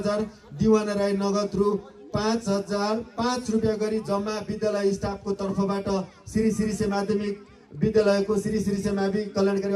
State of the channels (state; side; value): identical; both; correlation 1.00